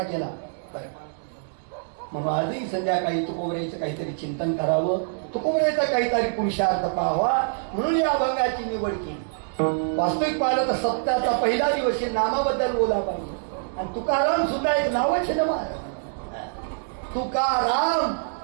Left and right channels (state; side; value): silent; left; 62 dB below the other